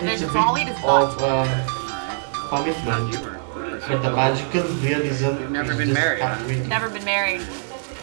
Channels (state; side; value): silent; left; 57 dB below the other